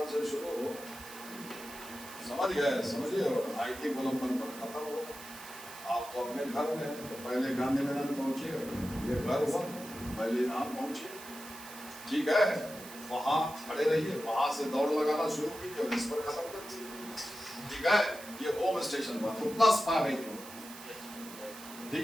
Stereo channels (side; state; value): right; noise; hiss, 15 dB below the sound